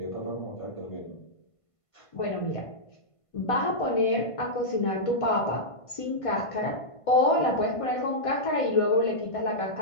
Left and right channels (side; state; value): right; late; 1.5 ms